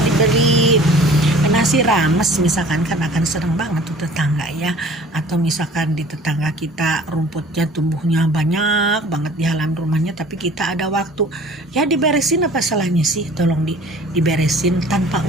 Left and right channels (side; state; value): both; normal; correlation 0.48